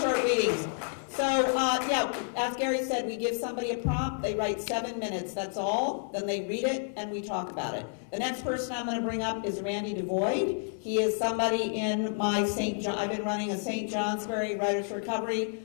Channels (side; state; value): right; silent; 58 dB below the other